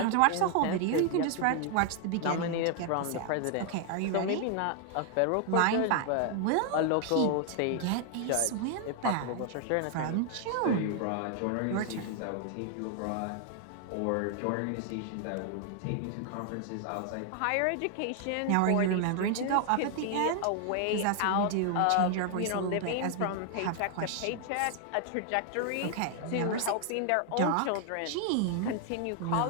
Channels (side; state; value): both; different; correlation 0.00